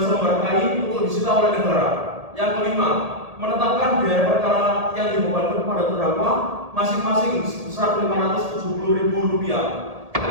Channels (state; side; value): late; left; 1.8 ms